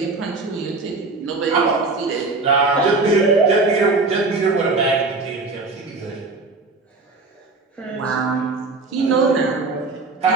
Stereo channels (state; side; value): quieter; left; 3.6 dB